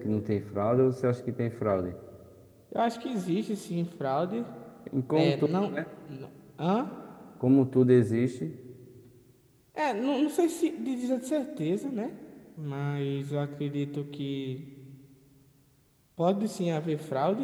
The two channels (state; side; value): identical; both; correlation 1.00